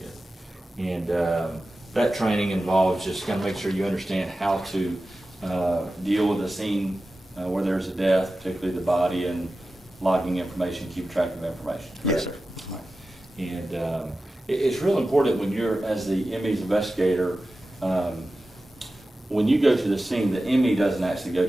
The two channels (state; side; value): normal; both; correlation 0.94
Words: good. And that training involves just kind of make sure you understand how to deal with a scene where there's a death, particularly the body, and logging information, keep track of information. Yes, sir. All right. And it's real important when you're, as the ME's investigator, when you go to the scene, the ME doesn't actually go